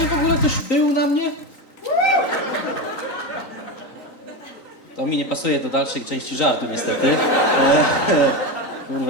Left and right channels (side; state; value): right; late; 3.9 ms